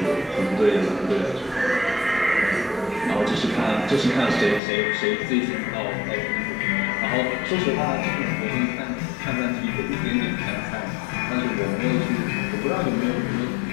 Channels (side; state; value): right; drops out; at 4.6 s